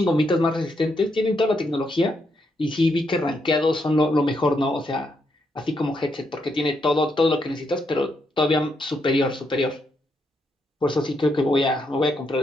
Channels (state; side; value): normal; both; correlation 0.79